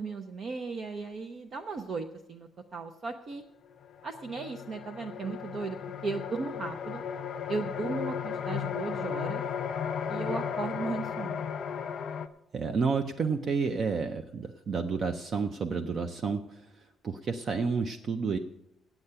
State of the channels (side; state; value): both; normal; correlation 0.71